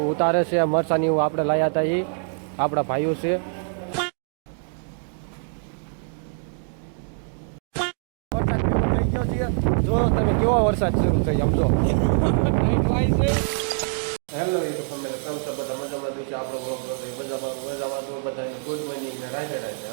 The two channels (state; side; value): silent; left; 62 dB below the other